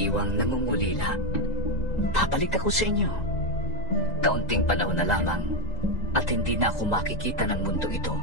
nangungulila. Babalik ako sa inyo. Kaunting panahon na lamang at hindi na ako makikita ng mundo ito.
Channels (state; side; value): late; right; 1.9 ms